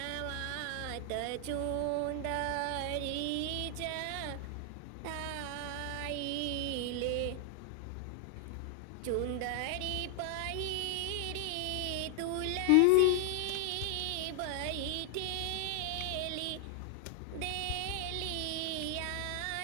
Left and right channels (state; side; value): different; both; correlation 0.00